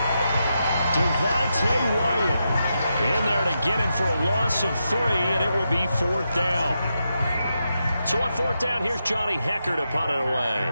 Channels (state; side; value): inverted; both; correlation -0.86